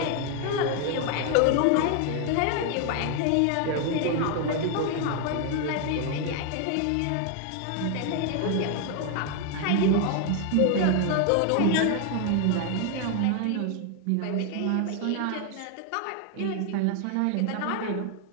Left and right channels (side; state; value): both; different; correlation 0.00